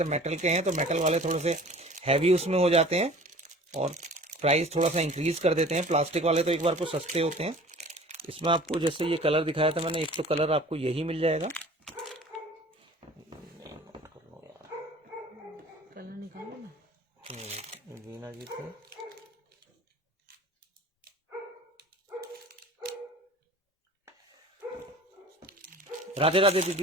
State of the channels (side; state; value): both; normal; correlation 0.45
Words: मेटल के हैं तो मेटल वाले थोड़े से हैवी उसमें हो जाते हैं और प्राइस थोड़ा सा इंक्रीज कर देते हैं। प्लास्टिक वाले तो एक बार को सस्ते होते हैं। इसमें आपको जैसे ये कलर दिखाया था मैंने, एक तो कलर आपको यही मिल जाएगा। कलर निकालो ना, वीना जी थे। राधे राधे